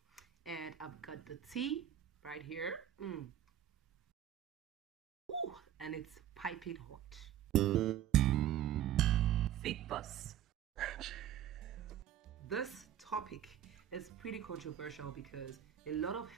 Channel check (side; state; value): left; quieter; 11.0 dB